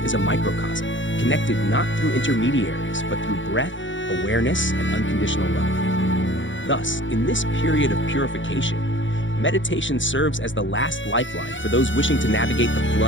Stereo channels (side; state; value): right; late; 0.55 ms